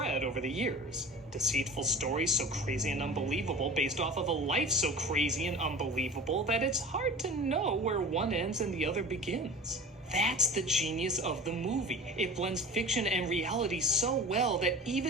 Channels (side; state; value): both; normal; correlation 0.37